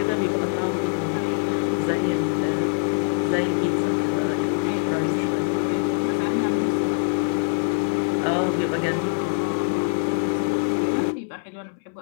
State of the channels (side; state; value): right; silent; 63 dB below the other